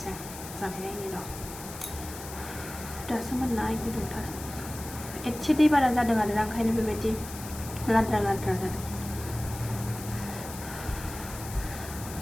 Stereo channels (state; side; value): noise; left; hiss, 12 dB below the sound